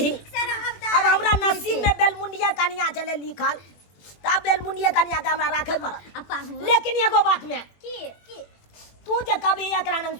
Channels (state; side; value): late; right; 21 ms